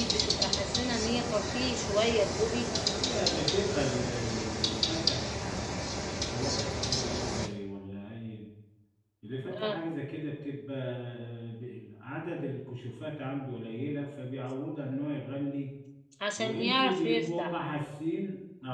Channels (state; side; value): identical; both; correlation 1.00